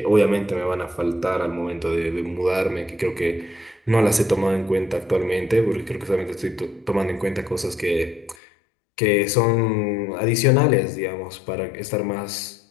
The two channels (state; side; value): drops out; right; at 8.3 s